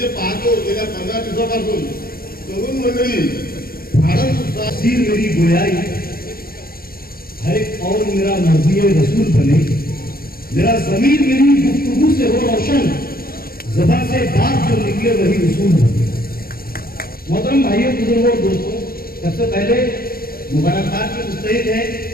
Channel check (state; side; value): late; right; 0.43 ms